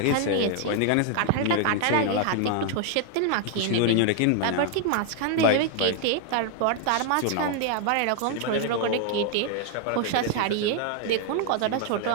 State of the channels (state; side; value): different; both; correlation 0.00